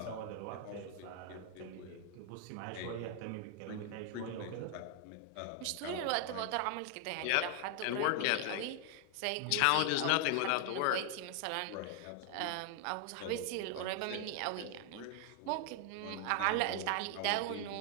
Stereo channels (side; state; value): both; different; correlation 0.00